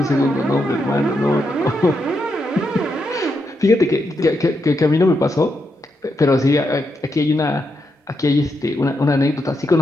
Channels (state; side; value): normal; both; correlation 0.83